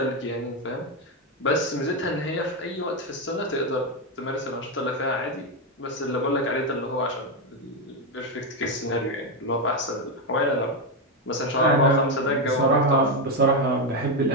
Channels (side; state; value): both; normal; correlation 0.07